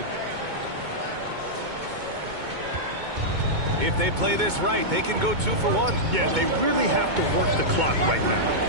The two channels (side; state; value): left; late; 2.2 ms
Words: If they play this right, they can go 2 for 1. Yeah, they really have to work the clock right now.